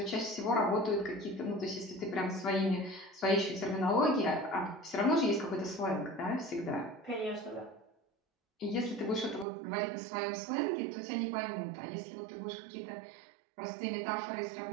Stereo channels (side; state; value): left; drops out; at 9.5 s